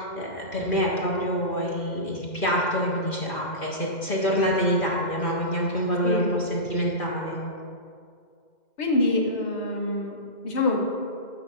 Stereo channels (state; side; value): late; right; 2.1 ms